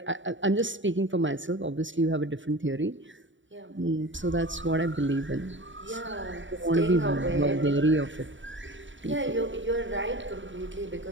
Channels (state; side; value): late; left; 0.55 ms